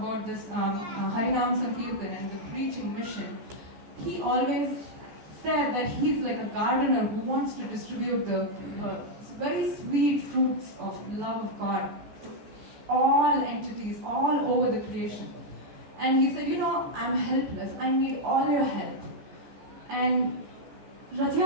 this Harinam Sankirtan and the preaching mission, he always said that he's like a gardener who wants to distribute the very sweet fruits of love of God to all entities, all over the creation. And he said, I'm helpless, I need all your help. And Rath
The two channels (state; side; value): late; left; 14 ms